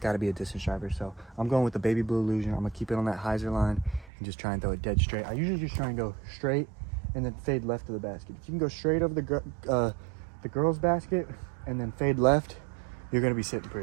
got to be a distance driver. So I'm going with the Baby Blue Illusion. I'm gonna keep it on that hyzer line and just try and throw it dead straight. I usually just try and go straight and then fade left to the basket. If you can go straight over the girls' basket and then fade left, you're gonna be sitting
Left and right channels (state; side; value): drops out; left; at 4.1 s